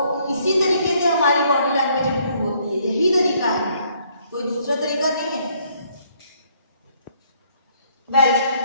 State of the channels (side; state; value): both; inverted; correlation -0.66